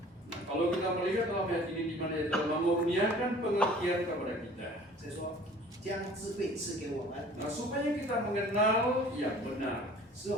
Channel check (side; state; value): both; normal; correlation 0.48